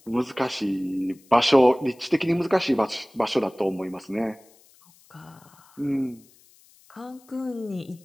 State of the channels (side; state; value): left; noise; hiss, 29 dB below the sound